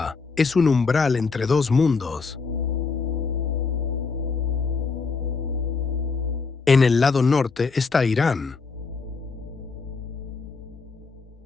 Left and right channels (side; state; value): right; quieter; 4.6 dB